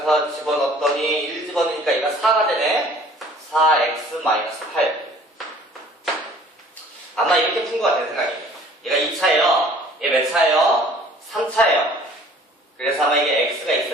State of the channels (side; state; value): both; normal; correlation 0.52